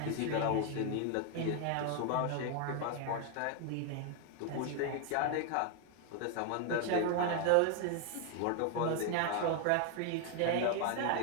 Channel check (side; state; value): both; different; correlation 0.00